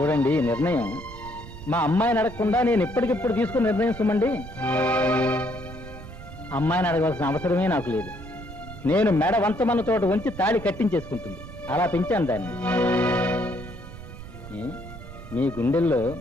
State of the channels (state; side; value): noise; right; rumble, 14 dB below the sound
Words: ఈ నిర్ణయం మా అమ్మాయిని అడగకుండా నేను ఇప్పటికిప్పుడు తీసుకుని నిర్ణయం సుమండి. అమ్మాయిని అడగవలసిన అవసరమే నాకు లేదు. నేను మెడ వంతమన్న చోట ఉంచి తాళి కట్టించేసుకుంటుంది. అలా పెంచాను దాన్ని. ఏ? మీ గుండెల్లో